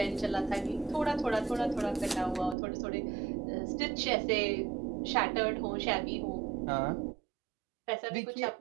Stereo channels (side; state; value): left; drops out; at 2.6 s